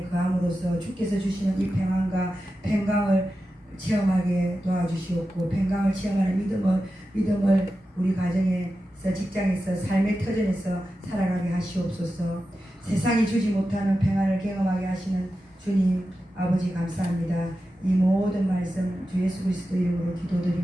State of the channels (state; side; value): normal; both; correlation 0.92